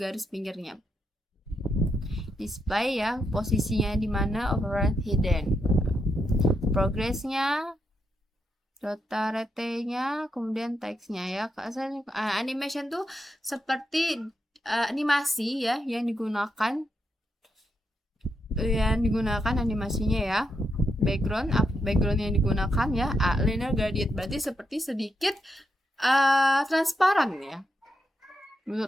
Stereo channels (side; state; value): both; normal; correlation 0.82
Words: pinggirnya. Display ya, posisinya di mana, override hidden. Progressnya, data rate-nya, kemudian teksnya ya. Animation tuh seperti animasi ya yang digunakan animasinya ya. Background yang digunakan ya, linear gradient, berarti seperti sedikit transparan ya.